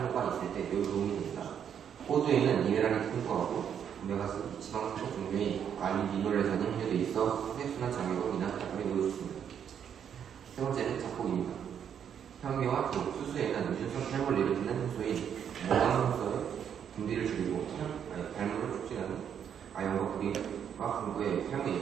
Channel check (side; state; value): left; quieter; 8.5 dB